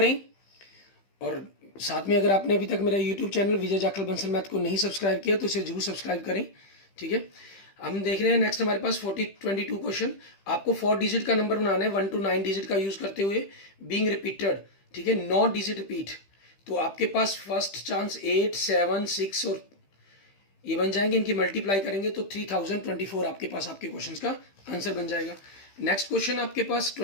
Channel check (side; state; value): right; late; 15 ms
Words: और साथ में अगर आपने अभी तक मेरा यूट्यूब चैनल विजय जाखल बंसल मैथ को नहीं सब्सक्राइब किया तो इसे जरूर सब्सक्राइब करें, ठीक है। हम देख रहे हैं नेक्स्ट हमारे पास 22 क्वेश्चन। आपको 4 डिजिट का नंबर बनाना है 1 to 9 डिजिट का यूज करते हुए, बीइंग रिपीटेड, ठीक है, 9 डिजिट रिपीट। तो आपके पास फर्स्ट चांस 8, 7, 6 और ये बन जाएंगे, इनकी मल्टीप्लाई करेंगे तो 3024 आपके पास आपके क्वेश्चन का आंसर बन जाएगा। नेक्स्ट क्वेश्चन आपके पास